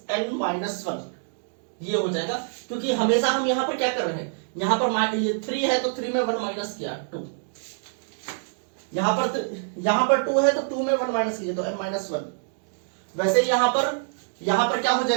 n minus one, ये हो जाएगा, क्योंकि हमेशा हम यहां पर क्या कर रहे हैं, यहां पर ये 3 है तो 3 में 1 माइनस किया 2, यहां पर 2 है तो 2 में 1 माइनस किया तो m माइनस वन। वैसे यहां पर क्या हो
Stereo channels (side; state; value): left; silent; digital silence